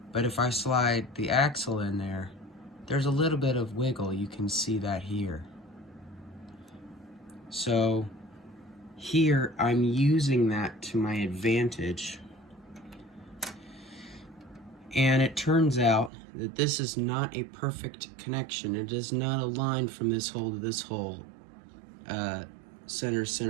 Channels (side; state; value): left; drops out; at 16.1 s